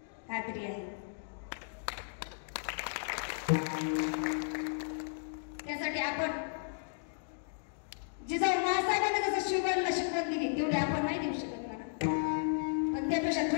खात्री आहे. त्यासाठी आपण जिजाऊ महासाहेबांनी जसं शिवबाईला शिकवण दिली तेवढी आपण नाही देऊ शकत मला, पण त्यापेक्षा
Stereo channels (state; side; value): silent; right; digital silence